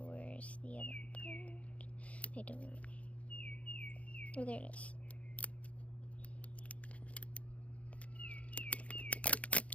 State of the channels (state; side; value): late; right; 0.065 ms